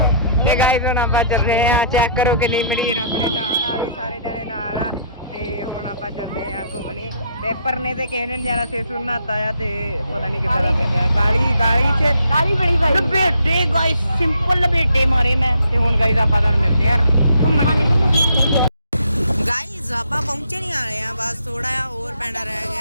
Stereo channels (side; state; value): both; inverted; correlation -0.65